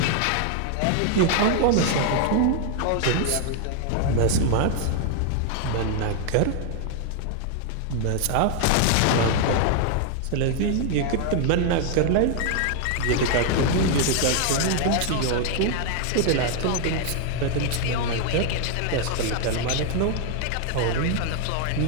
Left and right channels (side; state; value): both; different; correlation 0.00